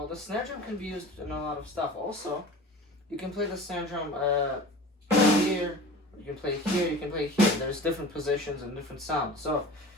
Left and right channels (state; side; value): normal; both; correlation 0.38